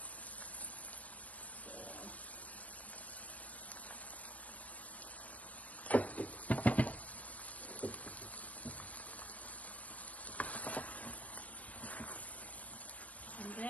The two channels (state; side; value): late; right; 0.069 ms